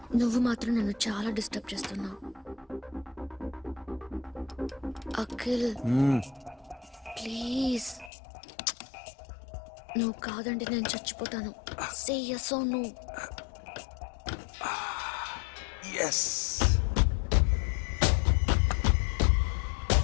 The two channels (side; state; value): right; drops out; at 8.1 s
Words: నువ్వు మాత్రం నన్ను చాలా డిస్టర్బ్ చేస్తున్నావు. అఖిల్ ప్లీజ్, నువ్వు కాదంటే నేను చచ్చిపోతాను. సే yes or no. yes.